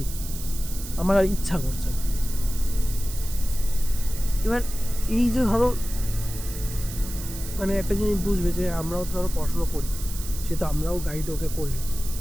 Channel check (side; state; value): right; noise; hiss, 11 dB below the sound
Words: আমার আর ইচ্ছা করছে না। এবার এই যে ধরো মানে একটা জিনিস বুঝবে যে আমরাও তো ধরো পড়াশোনা করি, সে তো আমরাও গাইড ওকে করলি